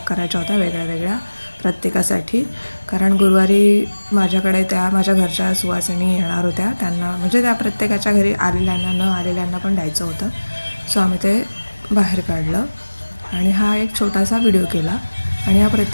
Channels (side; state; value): both; inverted; correlation -1.00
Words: करायच्या होत्या वेगळ्या वेगळ्या प्रत्येकासाठी. कारण गुरुवारी माझ्याकडे त्या माझ्या घरच्या सुवासिनी येणार होत्या, त्यांना म्हणजे त्या प्रत्येकाच्या घरी आलेल्यांना न आलेल्यांना पण द्यायचं होतं. सो आम्ही ते बाहेर काढलं आणि हा एक छोटासा व्हिडिओ केला. आणि या